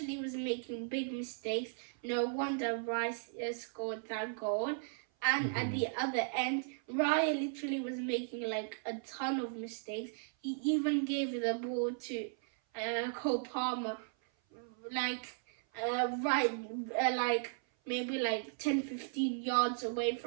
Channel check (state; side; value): silent; left; 54 dB below the other